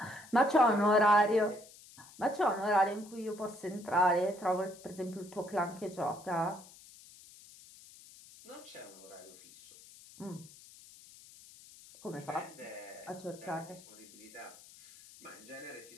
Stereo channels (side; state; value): left; noise; hiss, 21 dB below the sound